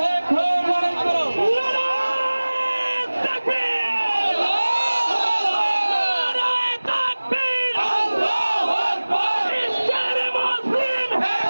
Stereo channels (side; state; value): both; inverted; correlation -1.00